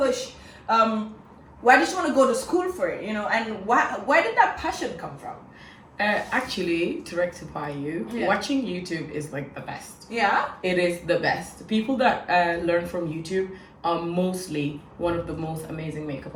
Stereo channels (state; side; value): identical; both; correlation 1.00